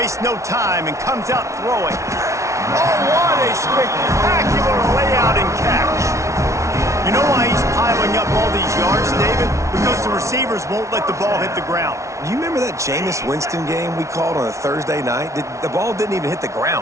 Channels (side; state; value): left; late; 0.14 ms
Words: no time and comes out throwing. Oh, what a spectacular layout and catch. You know why he's piling up all these yards, David? Because the receivers won't let the ball hit the ground. You remember that Jameis Winston game we called on a Thursday night? The ball didn't even hit the